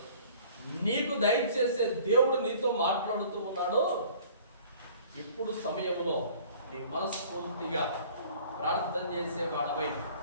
నీకు దయచేసే దేవుడు నీతో మాట్లాడుతూ ఉన్నాడు. ఇప్పుడు సమయంలో నీ మనస్ఫూర్తిగా ప్రార్థన చేసేవాడవై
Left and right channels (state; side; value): inverted; both; correlation -0.51